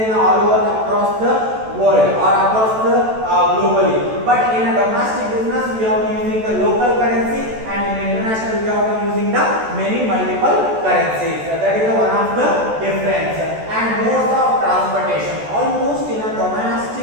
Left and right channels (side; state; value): left; late; 14 ms